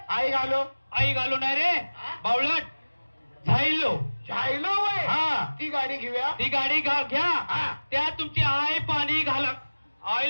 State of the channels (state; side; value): inverted; both; correlation -1.00